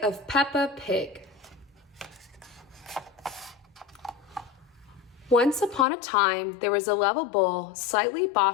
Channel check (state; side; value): drops out; right; at 5.9 s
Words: Peppa Pig. Once upon a time, there was a lovable, slightly